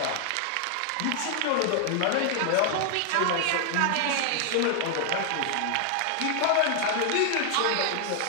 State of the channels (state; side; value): different; both; correlation 0.00